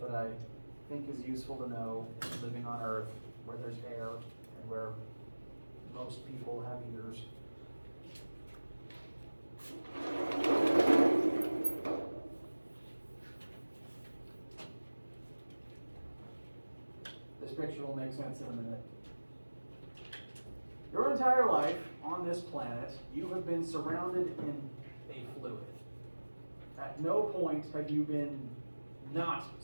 that I think is useful to know living on Earth where there's air and where most people have ears. This picture will make sense in a minute. Your entire life on this planet, you have been surrounded in a fluid. At no point have you been not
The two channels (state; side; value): inverted; both; correlation -1.00